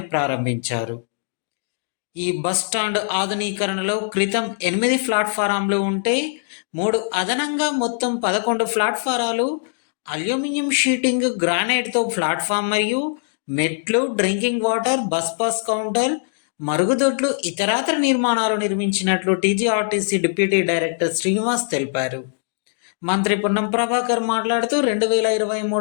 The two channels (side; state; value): right; silent; digital silence